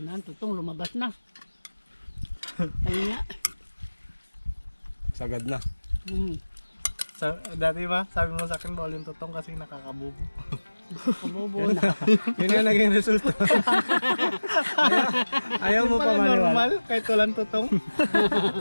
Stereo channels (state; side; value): inverted; both; correlation -1.00